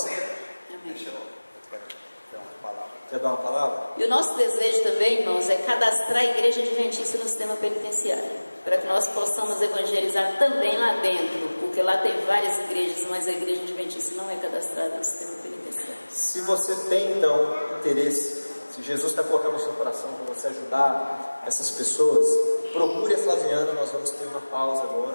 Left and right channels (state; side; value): inverted; both; correlation -1.00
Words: Amém. Quer dar uma palavra? E o nosso desejo também, irmãos, é cadastrar a igreja adventista no sistema penitenciário, para que nós possamos evangelizar também lá dentro, porque lá tem várias igrejas, mas a igreja adventista não é cadastrada no sistema penitenciário. Se você tem então interesse, se Jesus está colocando no seu coração para você ajudar essas pessoas, procure a Flaviana. Nós vamos ter uma pausa